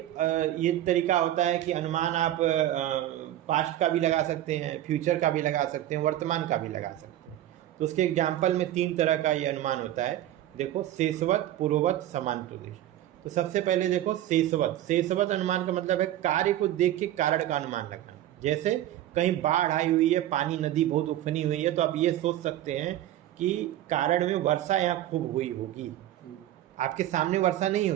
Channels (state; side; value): quieter; left; 13.1 dB